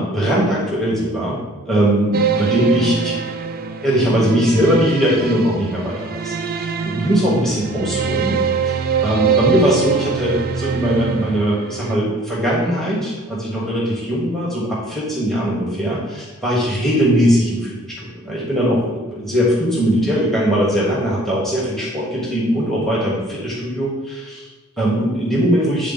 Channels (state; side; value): normal; both; correlation 0.54